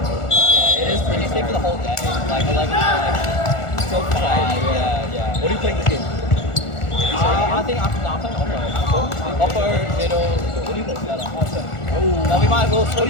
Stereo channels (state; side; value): late; right; 1.4 ms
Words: it is pretty. You stay for the whole day, like 11 to So 5. Yeah. What are you playing this game? I think I'm playing upper, middle. What do you play? No, we might as well split.